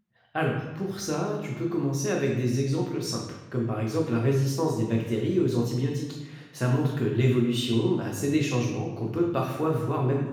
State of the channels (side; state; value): both; identical; correlation 1.00